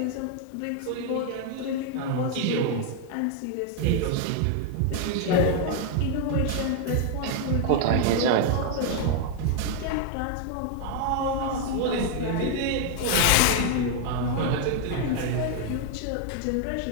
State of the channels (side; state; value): both; different; correlation 0.00